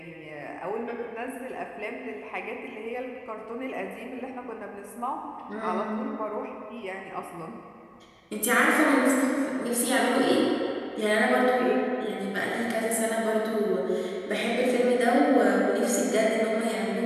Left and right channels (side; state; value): both; identical; correlation 1.00